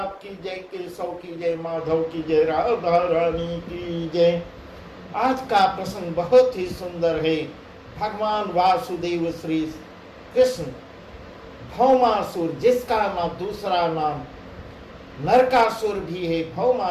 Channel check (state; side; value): identical; both; correlation 1.00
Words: की जय, केशव की जय, माधव की जय, राधा रानी की जय। आज का प्रसंग बहुत ही सुंदर है। भगवान वासुदेव श्री कृष्ण भौमासुर, जिसका नाम दूसरा नाम नरकासुर भी है,